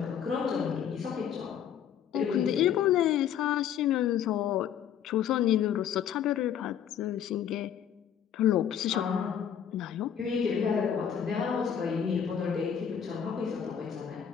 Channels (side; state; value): right; quieter; 8.8 dB